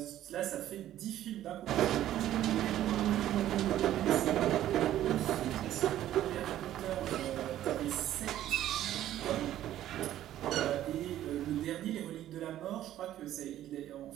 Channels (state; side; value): quieter; left; 12.7 dB